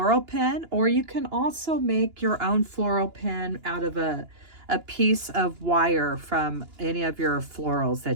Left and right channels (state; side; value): late; left; 2.9 ms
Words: pin, or you can also make your own floral pin out of a piece of wire from any of your florals